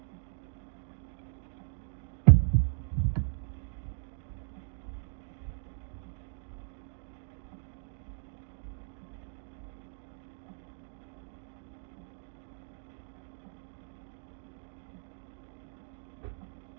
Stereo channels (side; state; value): left; silent; digital silence